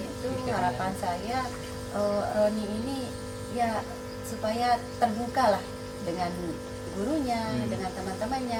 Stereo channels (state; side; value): identical; both; correlation 1.00